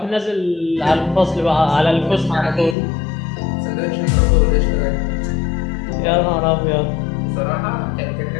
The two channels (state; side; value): drops out; right; at 2.8 s